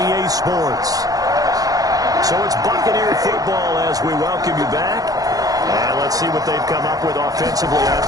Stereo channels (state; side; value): late; left; 0.18 ms